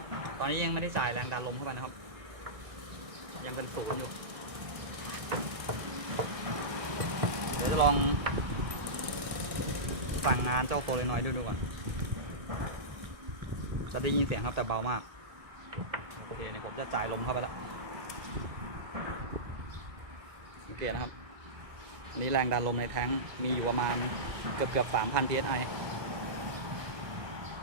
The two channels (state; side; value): late; left; 1.6 ms